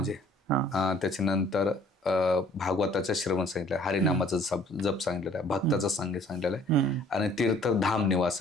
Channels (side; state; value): both; normal; correlation 0.56